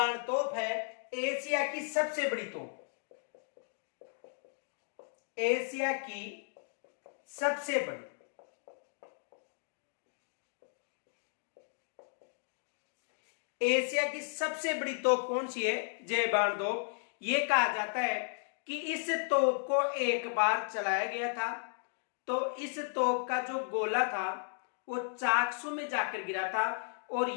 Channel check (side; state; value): right; silent; digital silence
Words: तोप है एशिया की सबसे बड़ी तोप। एशिया की सबसे बड़ी एशिया की सबसे बड़ी तोप कौन सी है? जयबाण तोप। ये कहा जाता है कि इस तोप को एक बार चलाया गया था, तो इस तोप का जो गोला था वो चाकसू में जाकर गिरा था। और